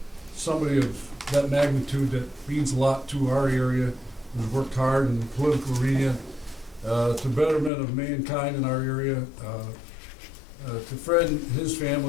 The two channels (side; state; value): right; drops out; at 7.7 s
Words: somebody of that magnitude that means a lot to our area, who's worked hard in the political arena, to betterment of mankind in our area. To Fred and his